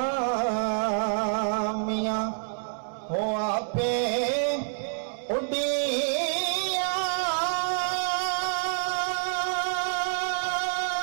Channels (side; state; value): left; silent; 60 dB below the other